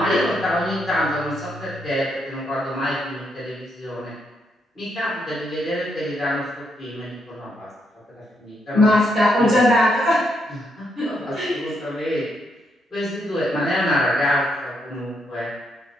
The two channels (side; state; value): both; normal; correlation 0.77